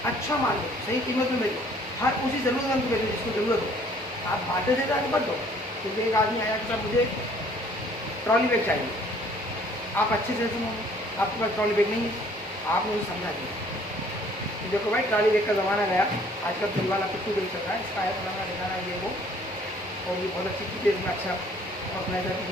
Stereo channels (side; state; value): both; normal; correlation 0.58